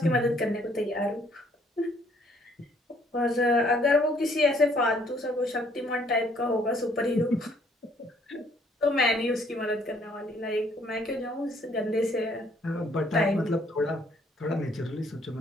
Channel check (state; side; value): normal; both; correlation 0.64